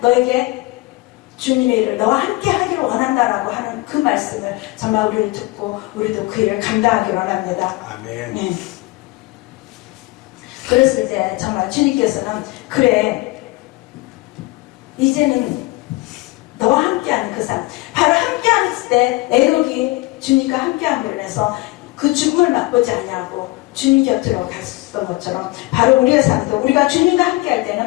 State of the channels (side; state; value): right; quieter; 21.9 dB